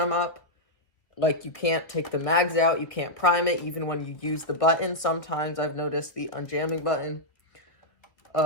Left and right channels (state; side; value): late; right; 1.4 ms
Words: up, like, you can't take the mags out. You can't prime it even when you use the button. Sometimes I've noticed the unjamming button,